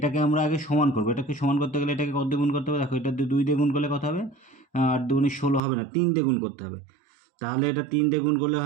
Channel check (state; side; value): drops out; left; at 5.6 s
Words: আমরা আগে সমান করবো। এটাকে সমান করতে গেলে এটাকে কত দিয়ে গুণ করতে হবে? দেখো, এটা ২ দিয়ে গুণ করলে কত হবে? ৮ দুগুণে ১৬ হবে না, ৩ দিয়ে গুণ করতে হবে। তাহলে এটা ৩ দিয়ে গুণ করলে